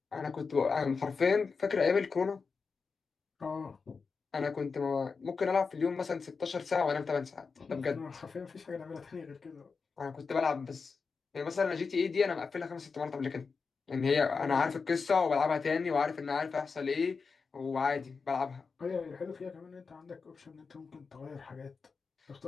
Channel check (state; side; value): quieter; right; 4.9 dB